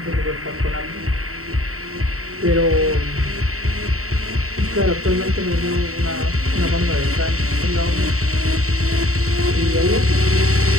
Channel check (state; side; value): late; left; 0.64 ms